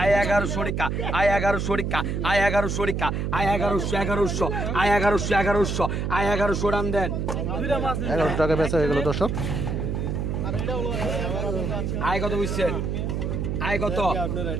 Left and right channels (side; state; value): right; noise; hum, 1 dB below the sound